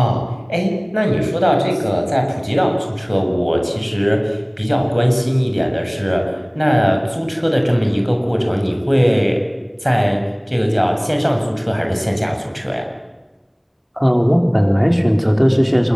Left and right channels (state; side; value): identical; both; correlation 1.00